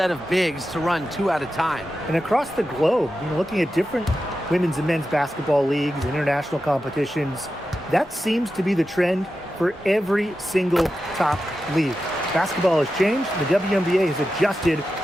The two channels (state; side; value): normal; both; correlation 0.91